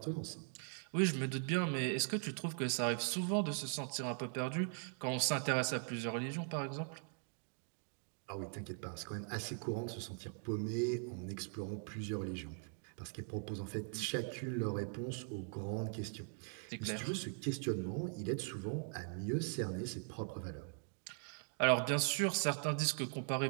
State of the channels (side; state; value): left; silent; 51 dB below the other